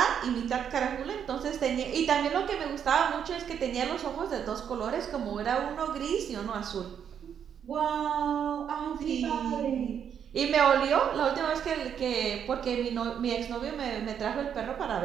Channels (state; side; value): quieter; left; 8.3 dB